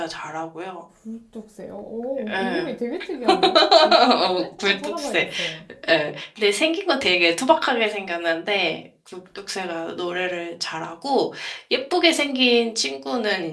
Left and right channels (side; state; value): both; identical; correlation 1.00